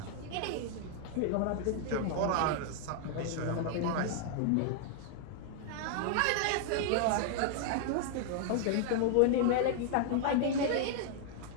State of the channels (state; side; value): different; both; correlation 0.00